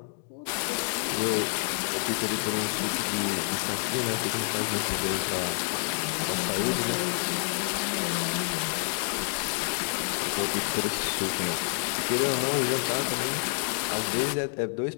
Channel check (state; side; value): silent; right; digital silence